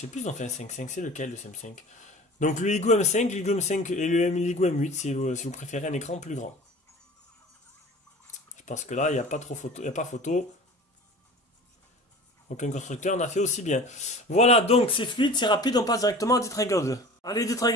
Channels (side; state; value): both; normal; correlation 0.39